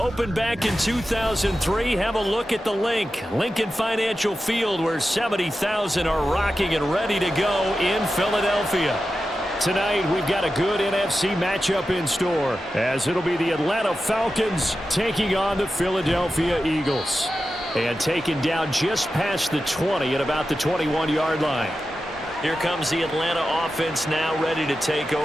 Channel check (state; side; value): normal; both; correlation 0.92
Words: back in 2003. Have a look at the link. Lincoln Financial Field, where 70,000 are rocking and ready to go in Philadelphia. Tonight, we've got a good NFC matchup in store, as it'll be the Atlanta Falcons taking on the Philadelphia Eagles. And taken down just past the 20 at about the 21-yard line. Here comes the Atlanta offense now ready to take